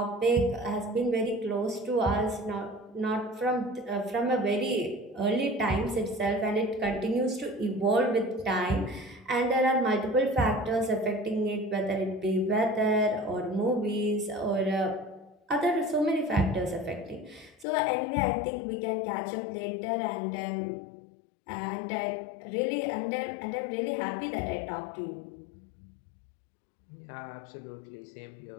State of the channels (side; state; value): right; drops out; at 17.7 s